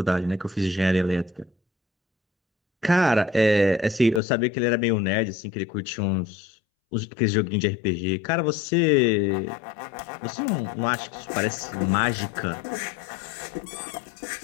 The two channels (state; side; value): drops out; right; at 4.2 s